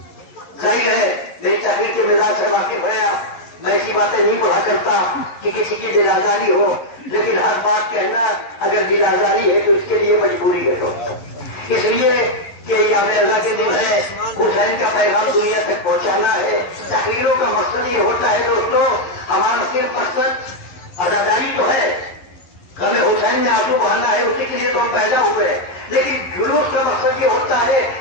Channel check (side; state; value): right; late; 11 ms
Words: ظاہر ہے میری تحریر کے مزاج سے واقف ہے. میں ایسی باتیں نہیں پڑھا کرتا کہ کسی کی دل آزاری ہو، لیکن ہر بات کہنا اگر دل آزاری ہے تو اس کے لیے مجبوری ہے. اس لیے کہ یہ ہمیں اللہ کے دل ہے، حسین کا پیغام دنیا تک پہنچانا ہے. تقریروں کا مقصد یہ ہوتا ہے دوستو، ہمارا صرف مقصد اداداری تو ہے، غم حسین میں آنسو بہانا ہے، اسی کے لیے تو ہم پیدا ہوئے. لیکن جلوس کا مقصد یہ ہوتا ہے